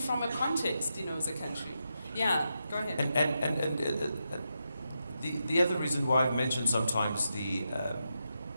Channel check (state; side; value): inverted; both; correlation -0.86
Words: a context, as a country. Yeah, go ahead. And the other reason why I've mentioned sometimes